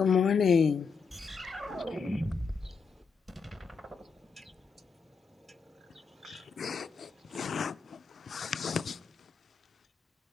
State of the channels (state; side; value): quieter; right; 5.3 dB